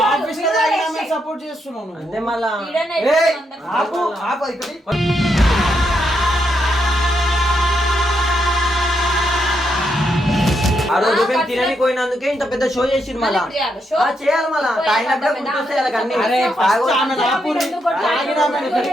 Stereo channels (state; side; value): normal; both; correlation 0.80